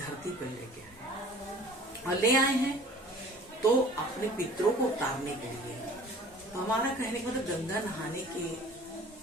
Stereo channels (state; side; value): normal; both; correlation 0.47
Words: पर लेके आए और ले आए हैं तो अपने पितरों को उतारने के लिए। तो हमारा कहने का मतलब गंगा नहाने के